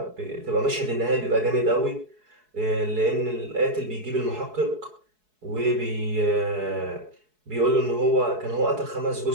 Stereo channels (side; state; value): left; late; 4.7 ms